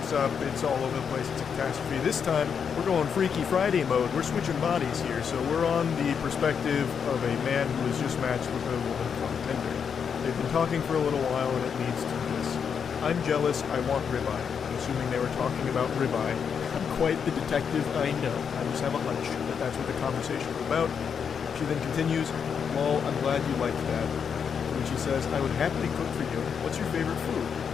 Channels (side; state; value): right; quieter; 6.9 dB